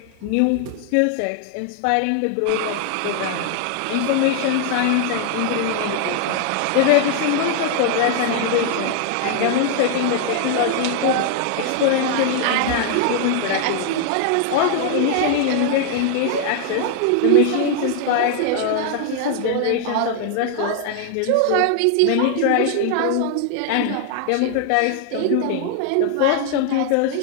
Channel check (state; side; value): different; both; correlation 0.00